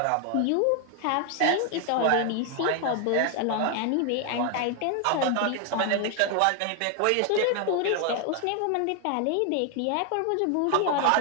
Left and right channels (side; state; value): both; different; correlation 0.00